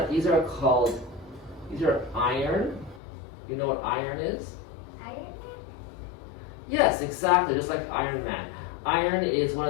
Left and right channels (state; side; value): drops out; right; at 3.0 s